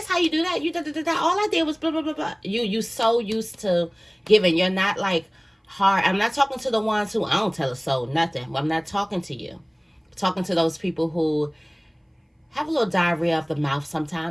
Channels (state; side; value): identical; both; correlation 1.00